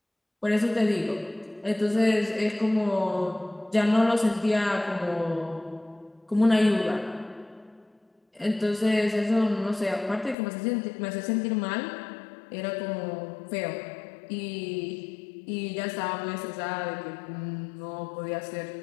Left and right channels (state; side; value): drops out; right; at 10.4 s